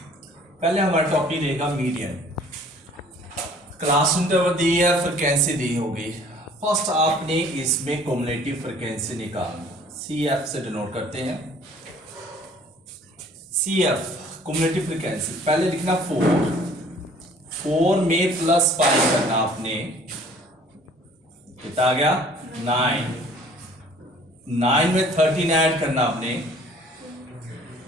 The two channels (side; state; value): both; normal; correlation 0.53